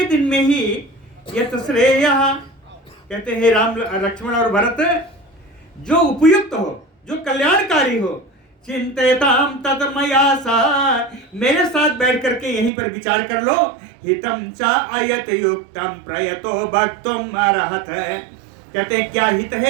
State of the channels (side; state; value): left; drops out; at 12.7 s